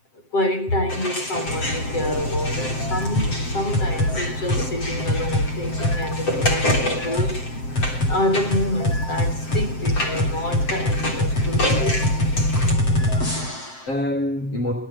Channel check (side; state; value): right; late; 7.6 ms